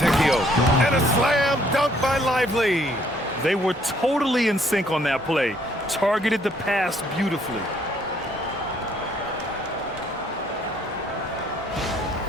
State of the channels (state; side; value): normal; both; correlation 0.65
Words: And a slam dunk by Lively. They were totally in sync on that play. Targeted the pass beautifully.